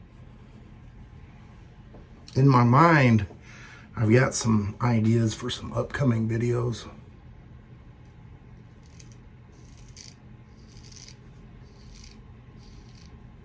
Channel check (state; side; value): identical; both; correlation 1.00